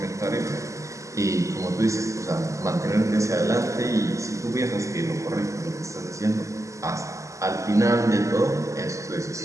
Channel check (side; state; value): left; late; 0.15 ms